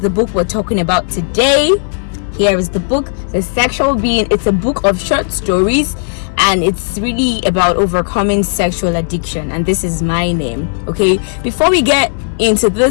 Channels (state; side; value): silent; right; digital silence